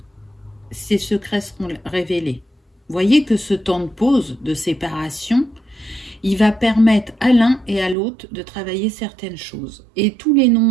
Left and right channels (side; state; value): left; drops out; at 8.0 s